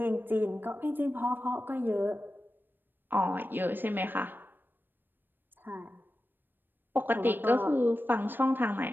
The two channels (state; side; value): late; left; 0.094 ms